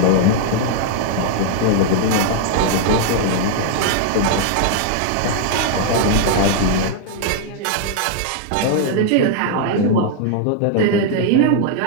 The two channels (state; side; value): different; both; correlation 0.00